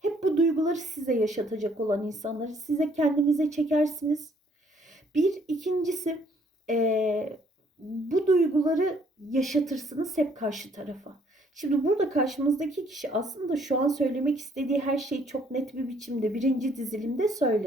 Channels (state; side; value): normal; both; correlation 0.64